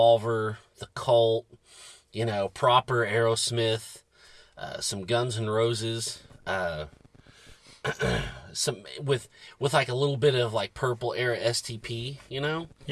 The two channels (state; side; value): identical; both; correlation 1.00